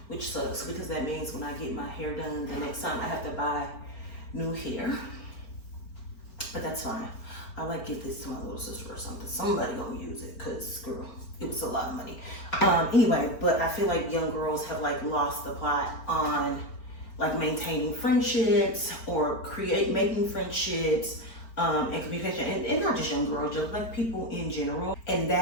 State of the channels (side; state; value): right; late; 4.4 ms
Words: which sucks, because that means when I get my hair done the next time I have to buy new hair, but that's fine. I like give this to my little sister or something. Somebody gonna use it, cause girl, it was a lot of money. Anyway, but I feel like young girls have like lost the plot on like maintaining friendships or making friendships and communication, and not just young girls, just like people in general. And